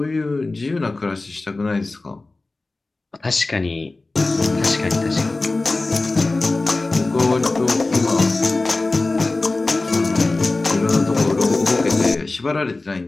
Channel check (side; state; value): right; quieter; 3.2 dB